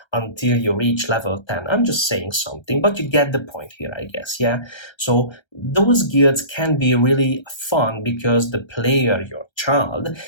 until you reach level 10. I'm just saying something, but you get the point here, I guess. Yeah. So those guilds can be really fun because the player, your child,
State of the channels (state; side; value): late; right; 1.3 ms